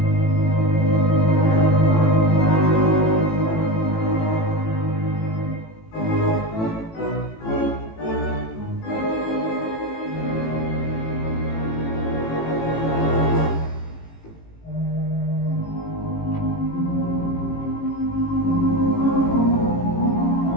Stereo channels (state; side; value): late; right; 18 ms